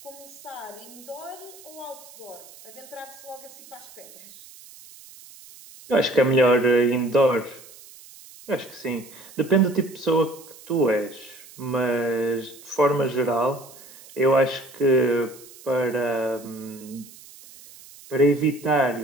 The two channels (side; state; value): right; noise; hiss, 20 dB below the sound